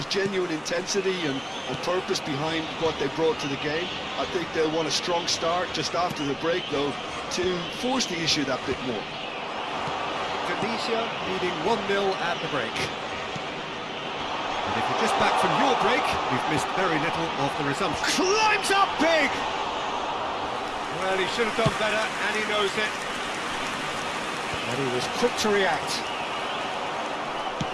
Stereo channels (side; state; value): both; identical; correlation 1.00